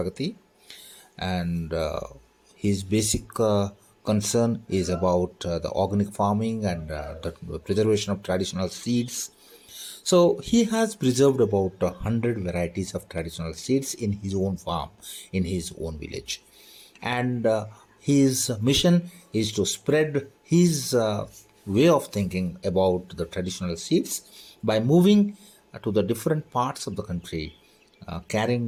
and his basic concern is about the organic farming and the preservation of traditional seeds. So he has preserved about 100 varieties of traditional seeds in his own farm, in his own village. And his mission is to spread his way of thinking about the traditional seeds by moving to the different parts of the country,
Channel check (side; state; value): both; identical; correlation 1.00